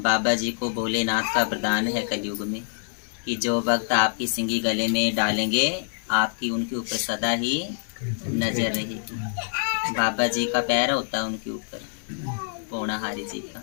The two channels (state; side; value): silent; right; digital silence